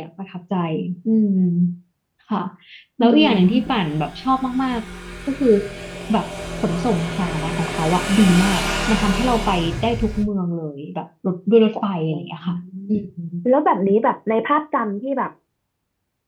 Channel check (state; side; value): identical; both; correlation 1.00